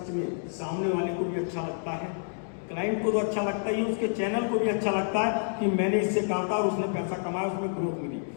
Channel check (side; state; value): right; silent; digital silence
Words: में सामने वाले को भी अच्छा लगता है, क्लाइंट को तो अच्छा लगता ही है, उसके चैनल को भी अच्छा लगता है कि मैंने इससे कहा था और उसने पैसा कमाया, उसमें ग्रोथ मिली।